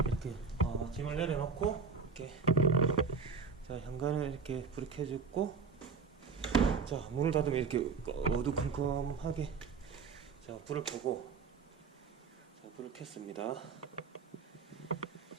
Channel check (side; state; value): left; quieter; 5.2 dB